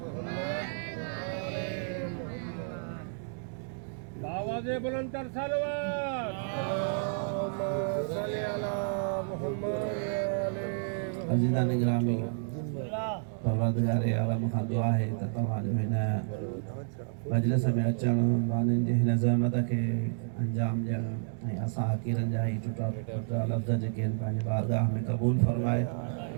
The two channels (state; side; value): silent; left; digital silence